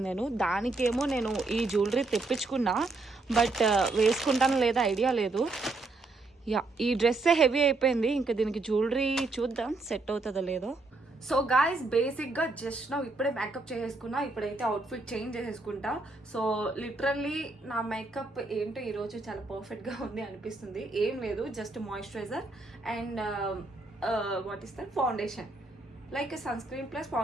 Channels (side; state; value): left; quieter; 3.3 dB